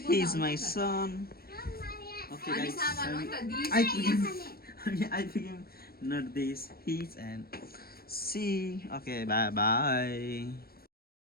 is my son okay guys I became not this he's and see okay bye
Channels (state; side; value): late; right; 0.44 ms